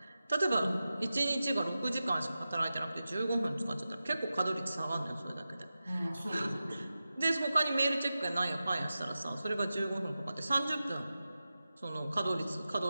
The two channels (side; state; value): both; inverted; correlation -0.93